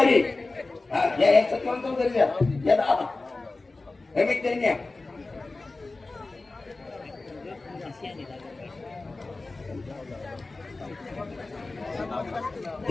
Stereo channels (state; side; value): quieter; right; 3.4 dB